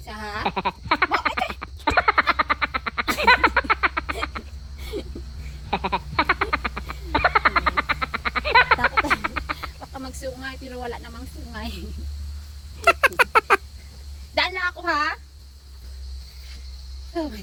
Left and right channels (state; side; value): identical; both; correlation 1.00